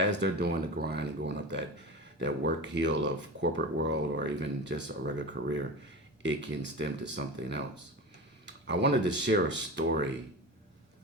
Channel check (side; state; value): both; normal; correlation 0.28